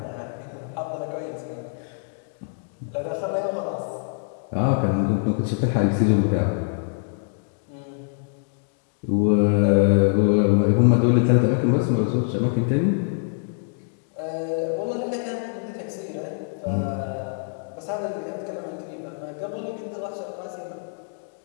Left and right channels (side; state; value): right; silent; digital silence